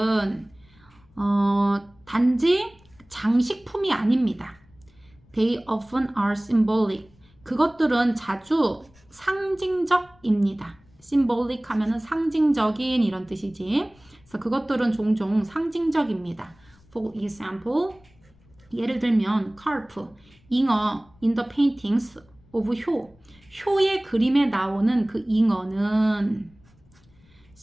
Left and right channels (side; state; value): left; noise; rumble, 30 dB below the sound